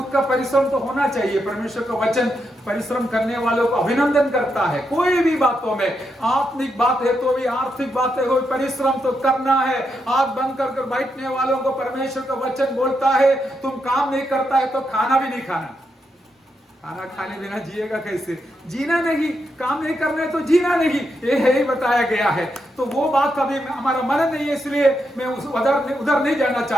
का परिश्रम तो होना चाहिए। परमेश्वर का वचन परिश्रम करने वालों को अभिनंदन करता है। कोई भी बातों में, आत्मिक बात है तो भी, आर्थिक बातें हो, परिश्रम तो करना है। आंख बंद कर बैठने वालों को परमेश्वर का वचन बोलता है, तुम काम नहीं करता है तो खाना भी नहीं खाना। खाना खाने बिना जिएगा कैसे? जीना नहीं, काम नहीं करना है तो जीना नहीं, ये है ही बताया गया है। तो वो बात अभी हमारा मन नहीं है, इसलिए मैं उधर नहीं जाना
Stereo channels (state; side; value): normal; both; correlation 0.82